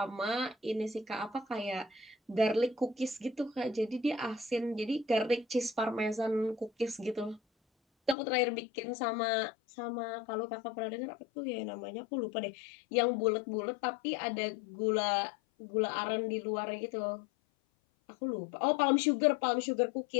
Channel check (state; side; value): drops out; right; at 8.2 s